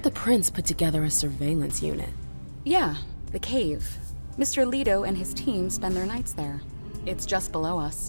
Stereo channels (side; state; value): both; inverted; correlation -1.00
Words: the prince put together a surveillance unit. Yeah, the cave. Mr. Leto and his team spend their nights there. It's just below